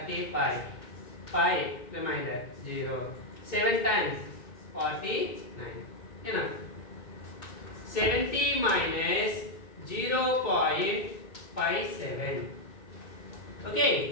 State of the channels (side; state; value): right; late; 2.2 ms